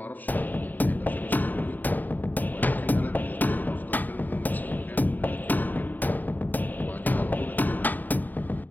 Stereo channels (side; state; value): right; late; 0.086 ms